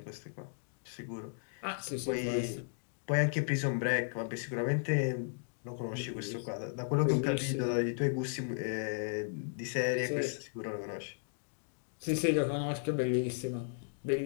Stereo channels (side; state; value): right; silent; digital silence